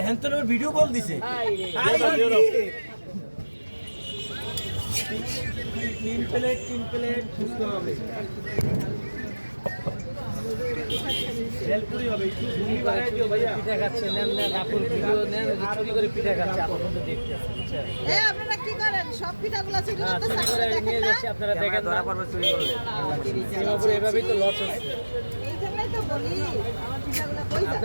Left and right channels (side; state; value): both; inverted; correlation -1.00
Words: হ্যান্টনের ভিডিও কল দিছে তিন প্লেট বুঝতে হবে ভেলপুরি হবে একটু ঘুগনি বানাই দিও ভাইয়া পিঠা খাচ্ছে নেন নেন আপুর ভিডিও নেন ওই যে চুরি করে পিঠা খাচ্ছে আপনার মধ্যে দেখতে বুঝছেন আপনারা কি করেন সব পিঠাগুলো চুরি হ্যাঁ করতে চুরি করে নিয়ে যাচ্ছে আপনারা দেখেন ধরা পড়বে চুরি করলে সিঙ্গাপুরে এভাবেই তো লস হচ্ছে এই জন্যই তো বলি আমার পিঠাগুলো কই যায়